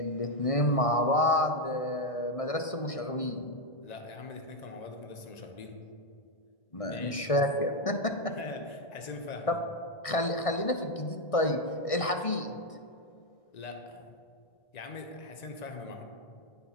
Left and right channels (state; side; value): late; right; 1.6 ms